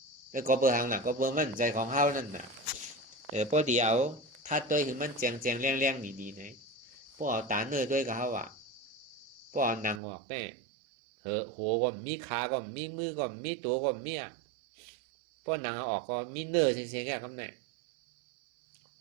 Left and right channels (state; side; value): drops out; left; at 10.0 s